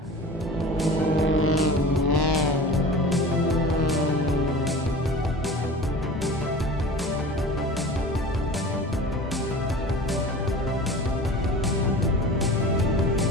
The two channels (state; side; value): normal; both; correlation 0.37